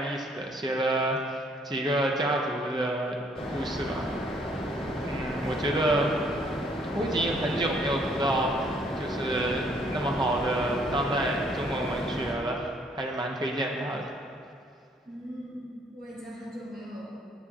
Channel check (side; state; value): both; normal; correlation 0.64